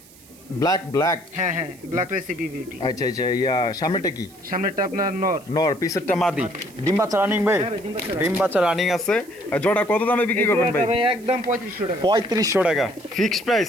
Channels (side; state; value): right; noise; hiss, 24 dB below the sound